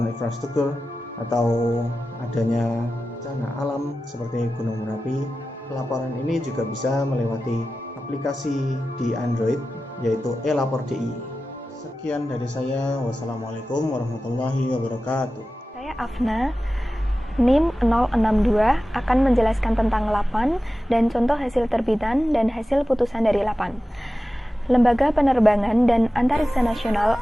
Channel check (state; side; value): normal; both; correlation 0.94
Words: infrastruktur atau adanya bencana alam seperti gunung Merapi. Laporan ini juga bisa melewati aplikasi di Android, yaitu e-lapor DIY. Sekian dari saya. Wassalamualaikum warahmatullahi wabarakatuh. Saya Afna, NIM 062, akan menjelaskan tentang LAPAN dan contoh hasil terbitan dan hasil putusan dari LAPAN. Lembaga Penerbangan dan Antariksa Nasional